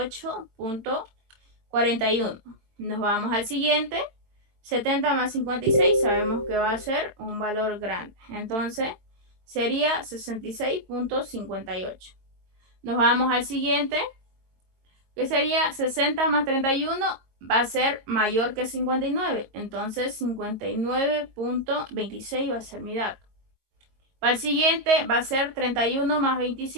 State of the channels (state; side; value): late; left; 22 ms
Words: Nos vamos al siguiente. 70 más 56 sabemos que va a ser un valor grande. Entonces sería 66.58. Nos vamos al siguiente, que sería 60 más 31, va a ser mayor que 59. Entonces 59.26 va a ser mi dato. Para el siguiente va a ser 31 más